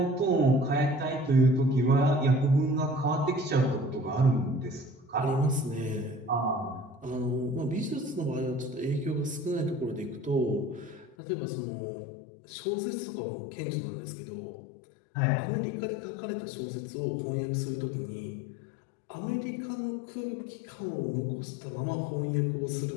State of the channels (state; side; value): drops out; right; at 11.2 s